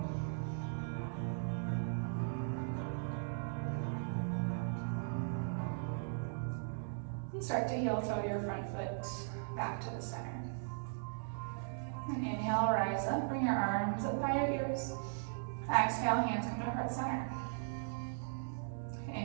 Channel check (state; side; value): silent; left; digital silence